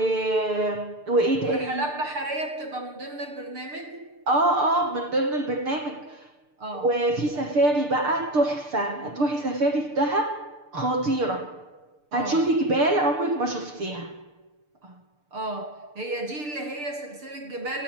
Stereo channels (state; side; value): late; left; 6.8 ms